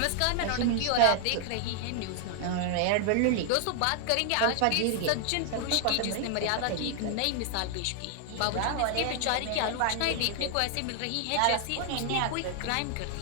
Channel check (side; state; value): both; different; correlation 0.00